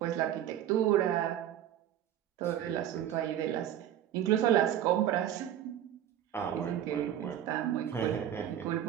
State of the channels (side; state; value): left; quieter; 10.9 dB